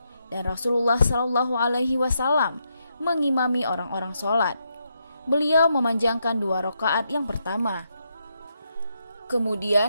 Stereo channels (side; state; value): both; inverted; correlation -0.81